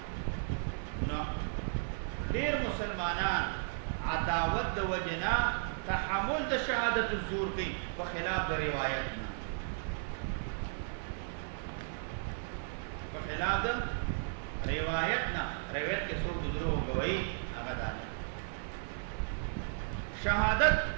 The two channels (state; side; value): silent; left; 55 dB below the other